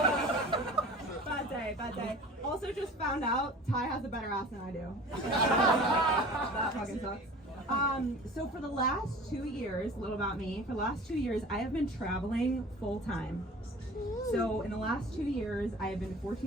Bad day. Also just found out Ty has a better ass than I do. That fucking sucks. So for the last 2 years, a little about me, for the last 2 years, I have been traveling full time. So in the last 2 years, I have been to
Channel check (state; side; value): normal; both; correlation 0.42